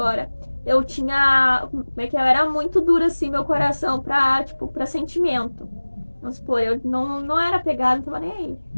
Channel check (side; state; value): both; inverted; correlation -1.00